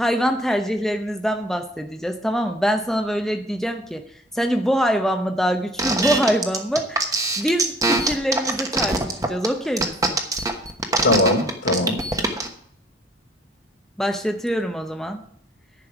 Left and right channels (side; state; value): both; normal; correlation 0.57